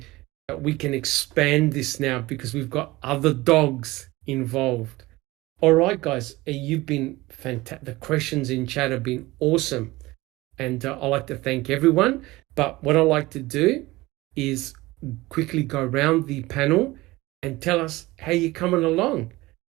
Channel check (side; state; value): left; quieter; 19.9 dB